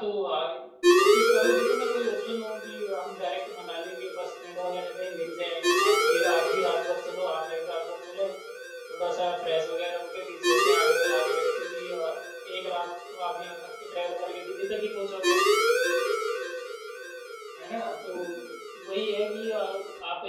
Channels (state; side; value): identical; both; correlation 1.00